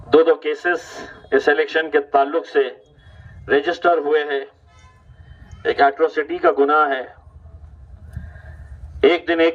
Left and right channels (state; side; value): identical; both; correlation 1.00